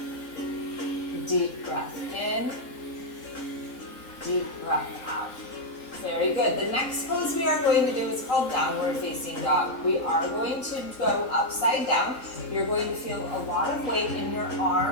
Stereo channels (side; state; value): right; late; 3.7 ms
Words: deep breath in, deep breath out. Very good. The next pose we are going to do is called downward facing dog. We are going to go upside down. You're going to feel a lot of weight in your